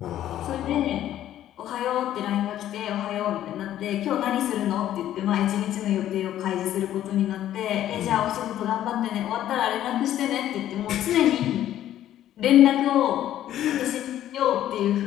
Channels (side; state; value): right; quieter; 12.2 dB